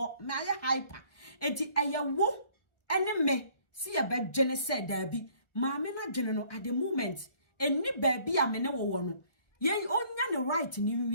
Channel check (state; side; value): late; right; 1.5 ms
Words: me aye hyper enti ayewo ene me see a bed dwene say da bi ma me na dwene no at the moment eni ba bi a me ne wo no ye onya ne right ni